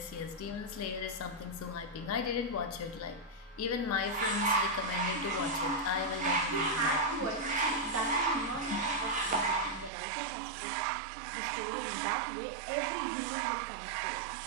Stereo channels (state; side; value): drops out; left; at 9.9 s